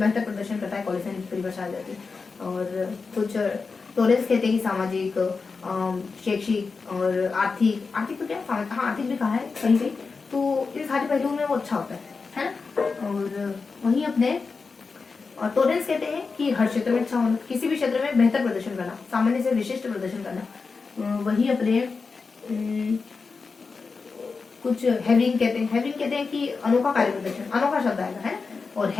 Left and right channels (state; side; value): quieter; right; 4.6 dB